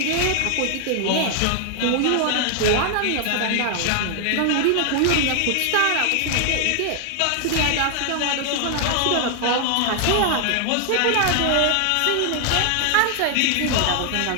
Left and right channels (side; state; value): both; different; correlation 0.00